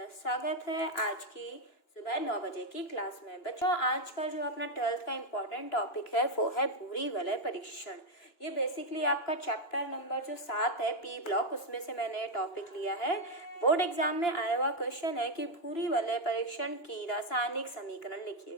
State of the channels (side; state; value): right; late; 2.9 ms